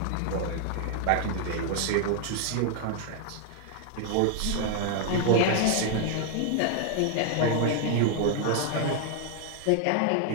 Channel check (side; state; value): both; different; correlation 0.00